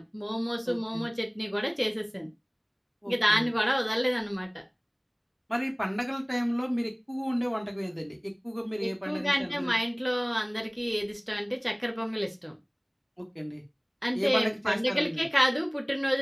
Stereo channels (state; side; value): identical; both; correlation 1.00